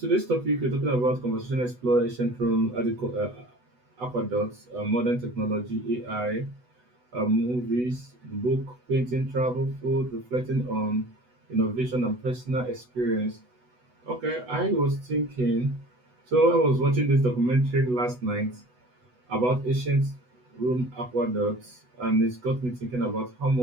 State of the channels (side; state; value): left; late; 8.1 ms